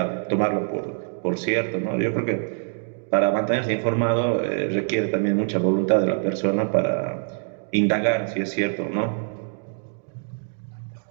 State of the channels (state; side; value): silent; left; 56 dB below the other